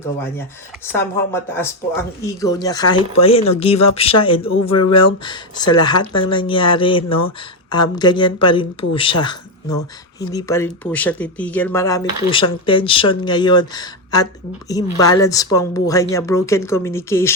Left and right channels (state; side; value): normal; both; correlation 0.08